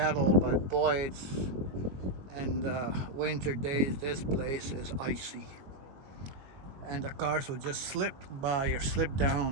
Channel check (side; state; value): left; late; 21 ms